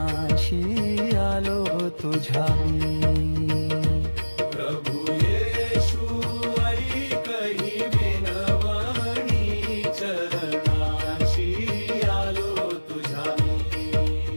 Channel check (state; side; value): inverted; both; correlation -1.00